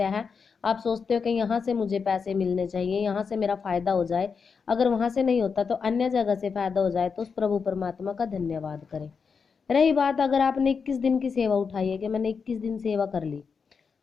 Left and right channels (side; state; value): right; quieter; 5.7 dB